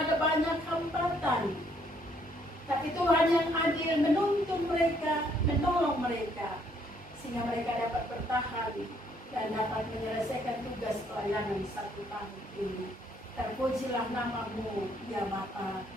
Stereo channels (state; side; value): normal; both; correlation 0.67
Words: banyak hambatan, tapi Tuhan yang adil menuntun mereka, menolong mereka, sehingga mereka dapat bertahan dan dapat menyelesaikan tugas pelayanan 1 tahun ini. Terpujilah nama-Mu, ya Bapa.